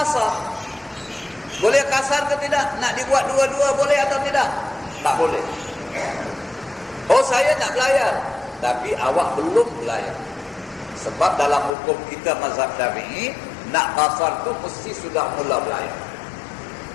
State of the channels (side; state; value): right; drops out; at 11.8 s